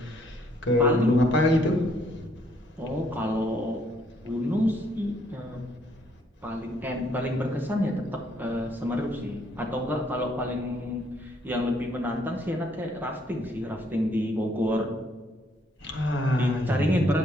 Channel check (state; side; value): normal; both; correlation 0.67